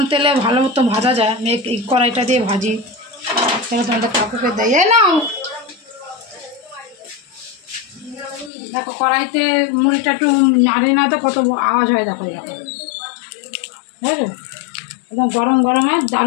তেলে ভালো মতো ভাজা যায়। আমি এই কড়াইটা দিয়ে ভাজি, সেটা তোমাদের কাকুকে দেয় নাও। দেখো কড়াইতে মুড়িটা একটু নাড়ি না তো কত আওয়াজ হয়, দেখো দেখো বুঝলো, একদম গরম গরমে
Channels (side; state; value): right; drops out; at 8.5 s